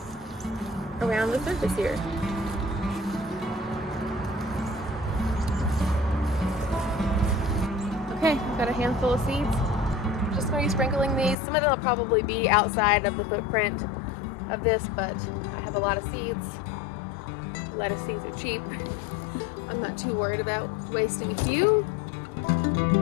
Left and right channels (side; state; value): right; drops out; at 11.4 s